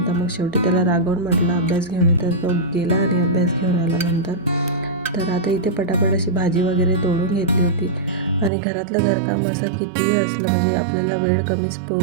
मग शेवटी त्याला रागवून म्हटलं अभ्यास घेऊन ये, तर तो गेला आणि अभ्यास घेऊन आला नंतर. तर आता इथे पटापट अशी भाजी वगैरे तोडून घेतली होती. आणि घरातलं घरकाम असं कितीही असलं म्हणजे आपल्याला वेळ कमीच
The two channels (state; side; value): drops out; left; at 8.5 s